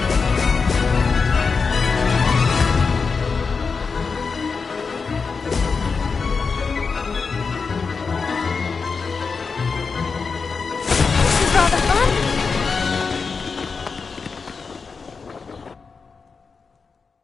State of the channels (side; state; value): right; quieter; 5.0 dB